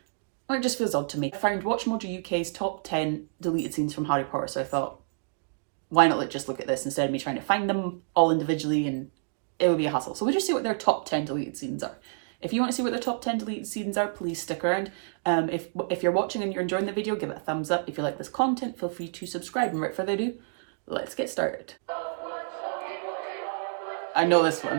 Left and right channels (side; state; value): left; silent; digital silence